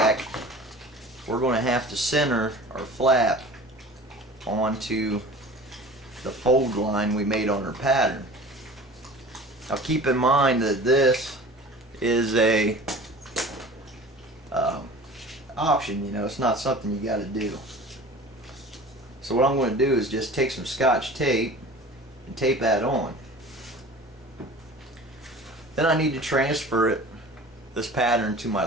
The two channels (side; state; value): both; normal; correlation 0.40